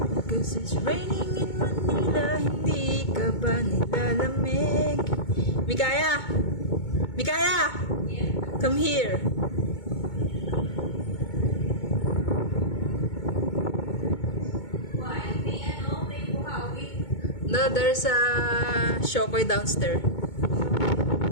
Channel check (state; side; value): late; right; 2.2 ms